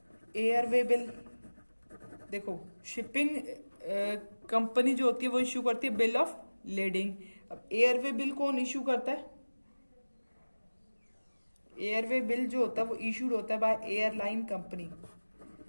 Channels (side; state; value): both; inverted; correlation -1.00